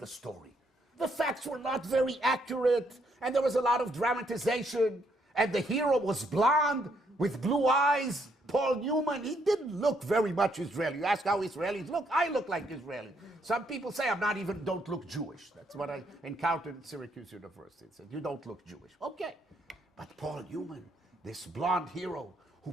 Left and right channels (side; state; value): both; normal; correlation 0.73